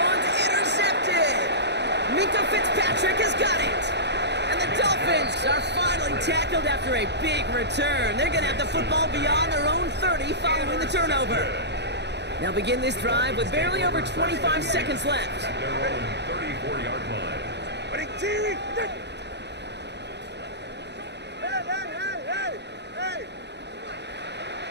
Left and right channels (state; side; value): late; left; 0.50 ms